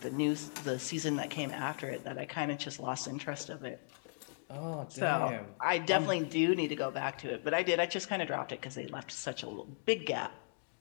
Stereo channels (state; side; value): silent; right; digital silence